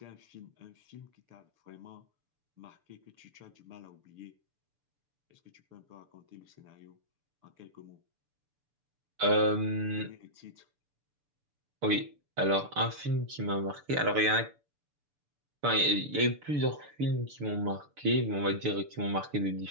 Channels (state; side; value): late; left; 6.9 ms